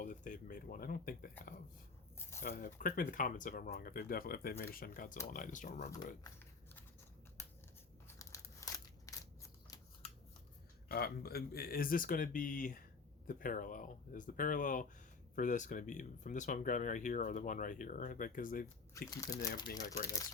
if they've made one. I don't think they have. Correct me in the comments if I'm wrong. If they've made a Shin Godzilla and I just don't remember it. Is this going to be the parallel? Is the parallel for this going to be from this one I'm grabbing right here or the one right here? Because they keep ending up being like right next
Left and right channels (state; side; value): quieter; right; 4.5 dB